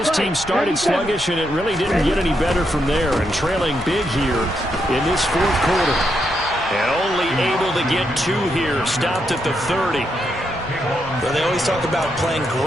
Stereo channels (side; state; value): both; normal; correlation 0.81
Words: team started sluggish, and it really didn't get any better from there, and trailing big here in this fourth quarter. And only able to get 2 here, stopped at the 30. Well, they always talk about playing